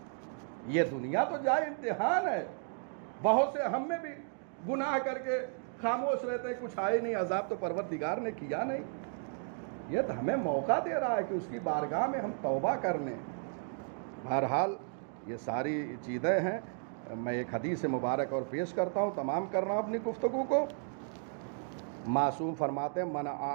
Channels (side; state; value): left; silent; 55 dB below the other